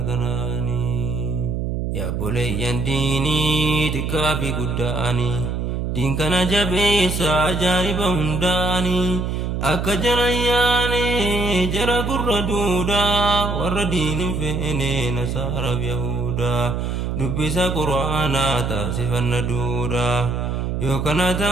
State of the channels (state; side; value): noise; right; hum, 1 dB below the sound